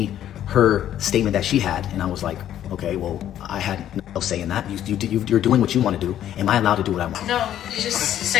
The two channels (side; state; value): right; quieter; 11.3 dB